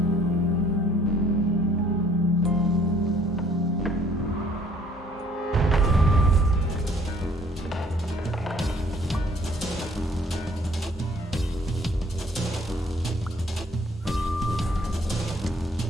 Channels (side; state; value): both; normal; correlation 0.59